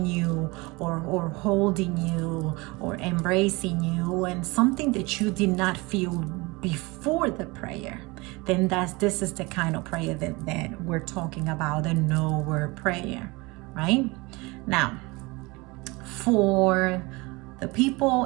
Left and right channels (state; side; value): quieter; left; 24.5 dB